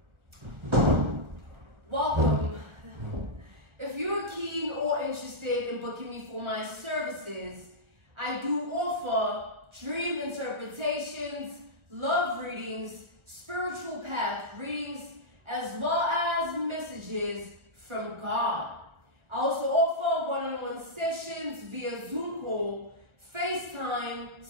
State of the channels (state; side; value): late; left; 1.5 ms